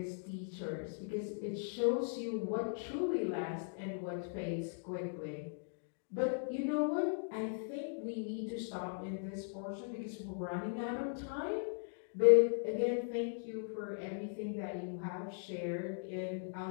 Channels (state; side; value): silent; right; digital silence